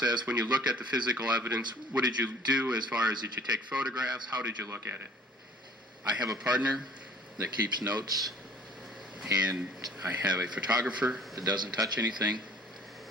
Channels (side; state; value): both; normal; correlation 0.51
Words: when you look at the physical evidence. What did you do as far as did you take photographs? How did you look at it? I have a partner that keeps notes, and I have a photographer that doesn't touch anything.